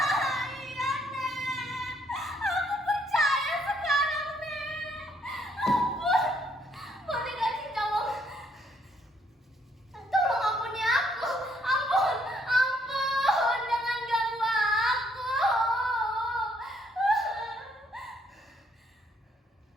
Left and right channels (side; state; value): both; normal; correlation 0.69